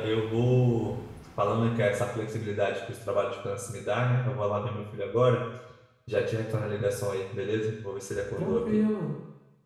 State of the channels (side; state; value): both; identical; correlation 1.00